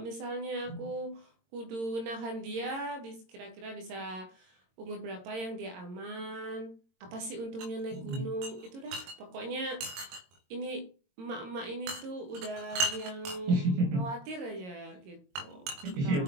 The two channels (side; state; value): left; late; 22 ms